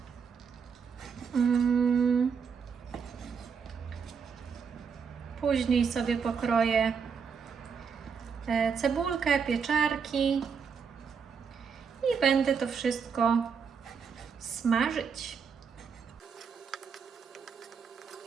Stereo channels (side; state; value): left; quieter; 6.2 dB